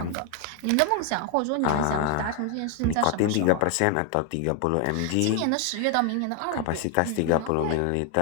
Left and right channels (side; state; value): both; different; correlation 0.01